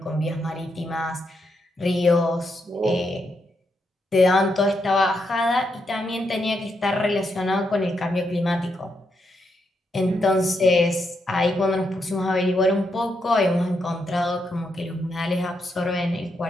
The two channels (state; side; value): normal; both; correlation 0.81